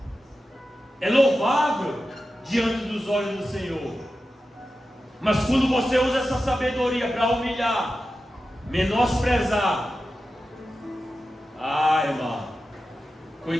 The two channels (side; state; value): both; normal; correlation 0.92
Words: é louvável diante dos olhos do Senhor. Mas quando você usa essa sabedoria para humilhar, menosprezar, irmão,